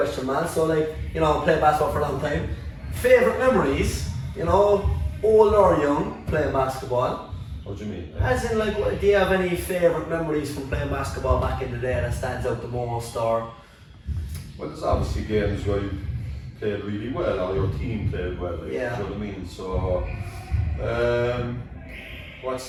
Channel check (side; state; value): both; identical; correlation 1.00